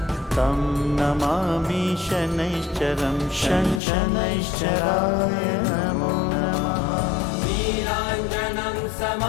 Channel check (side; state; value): right; drops out; at 3.8 s